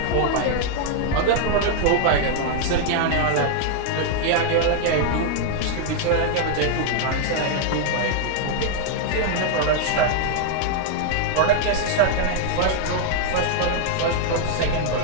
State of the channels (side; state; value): both; different; correlation 0.00